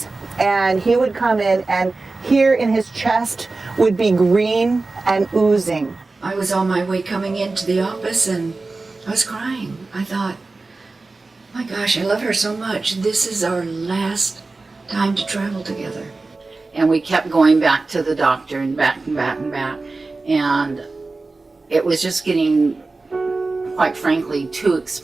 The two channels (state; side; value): quieter; left; 3.6 dB